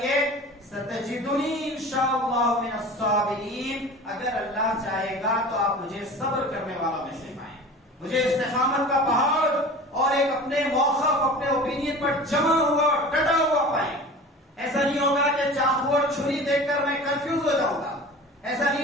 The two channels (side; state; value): both; normal; correlation 0.38